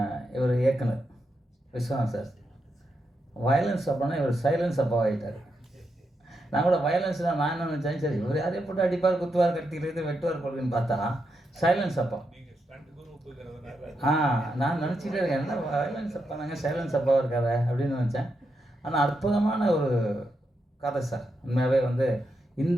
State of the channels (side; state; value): both; normal; correlation 0.84